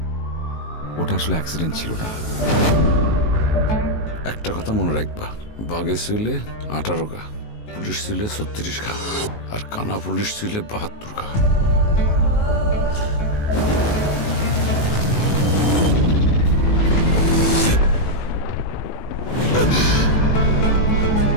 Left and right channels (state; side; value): late; right; 19 ms